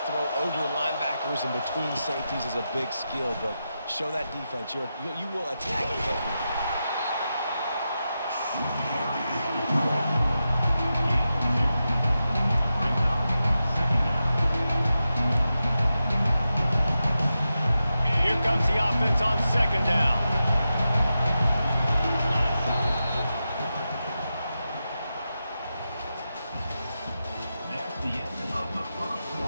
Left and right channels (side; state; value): both; inverted; correlation -0.90